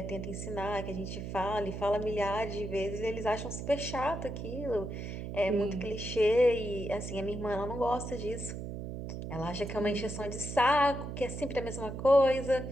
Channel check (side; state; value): right; noise; hum, 6 dB below the sound